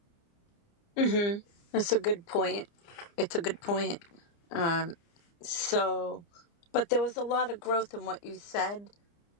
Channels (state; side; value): late; right; 29 ms